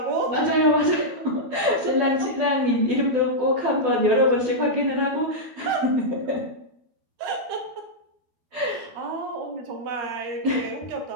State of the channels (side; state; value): left; late; 12 ms